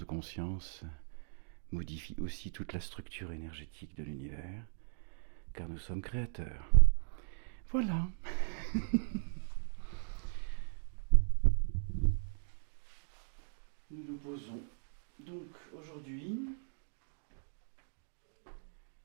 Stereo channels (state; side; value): silent; left; digital silence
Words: conscience modifie aussi toute la structure énergétique de l'univers, car nous sommes créateurs. Voilà. Nous nous posons donc aujourd'hui.